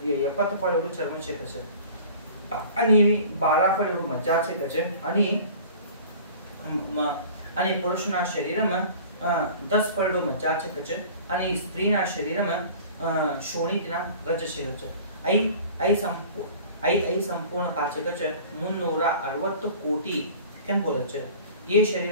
70 फळ एवढं चर्म छे छे आणि 12 फळ एवढं मज्जा छे छे आणि पुरुषना शरीर में 10 फळ एवढं मज्जा छे छे आणि स्त्रीना शरीर में शोणितना रज छे छे। आई संपूर्ण का छे छे 360 कोटी केम बोले छे। ये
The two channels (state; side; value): inverted; both; correlation -0.44